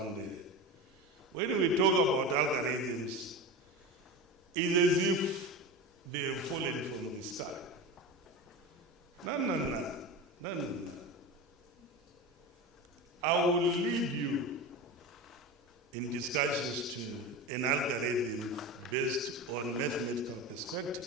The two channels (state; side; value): normal; both; correlation 0.25